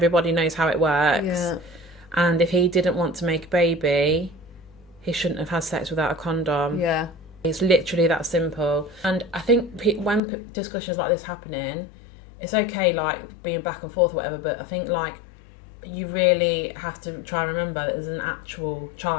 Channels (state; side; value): drops out; right; at 10.2 s